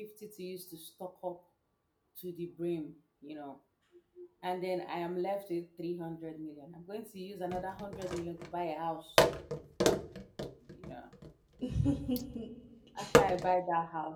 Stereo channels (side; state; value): both; identical; correlation 1.00